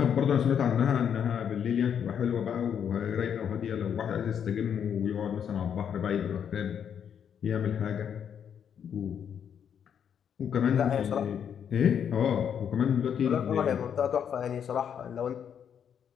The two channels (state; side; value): quieter; right; 8.2 dB